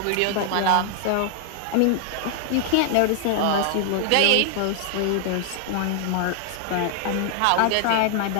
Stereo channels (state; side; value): different; both; correlation 0.00